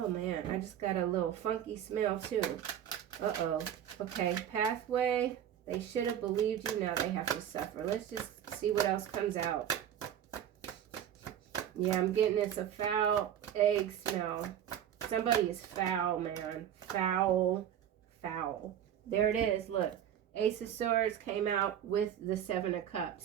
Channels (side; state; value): left; quieter; 10.0 dB